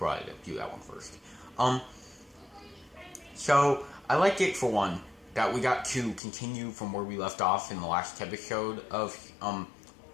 do that one first. So, I liked it, for one, that we got to continue from where we left off in the last episode of,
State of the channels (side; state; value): right; drops out; at 6.2 s